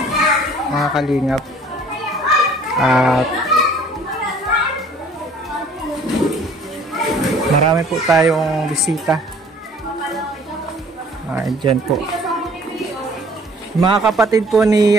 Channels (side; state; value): both; normal; correlation 0.54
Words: Mga kalingap. At marami po tayong bisita. Dyan po. Mga kapatid po